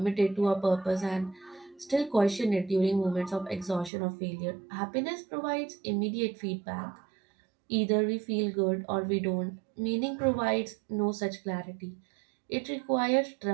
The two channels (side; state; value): left; drops out; at 3.9 s